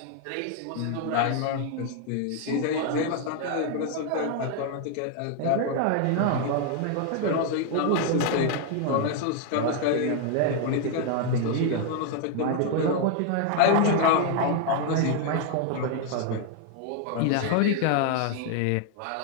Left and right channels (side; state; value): both; different; correlation 0.00